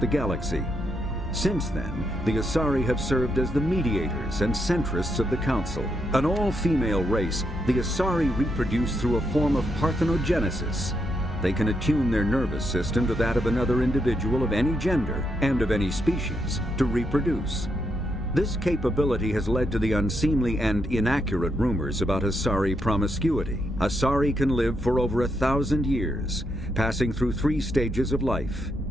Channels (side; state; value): both; normal; correlation 0.80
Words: the galaxy. Since then, the Asari have served as the mediators and centrists of the Council. An all-female race, the Asari reproduce through a form of parthenogenesis. They can attune their nervous system to that of another individual of any gender and of any species to reproduce. This capability has led to the unseemly and inaccurate rumors about Asari promiscuity. Asari can live for over 1,000 years, passing through 3 stages of life.